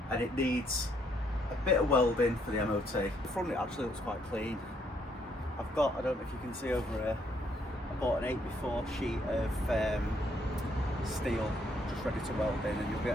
and it needs a bit of welding for the MOT. The front it actually looks quite clean. I've got, I don't know if you can see over here, I bought an 8x4 sheet of steel just ready to weld in, and you'll be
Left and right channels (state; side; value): normal; both; correlation 0.71